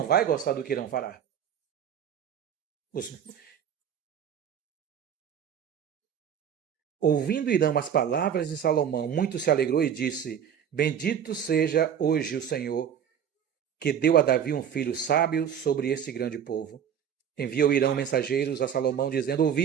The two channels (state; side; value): quieter; left; 8.6 dB